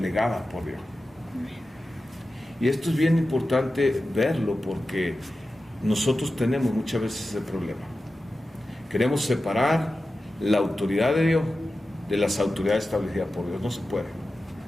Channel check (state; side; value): normal; both; correlation 0.93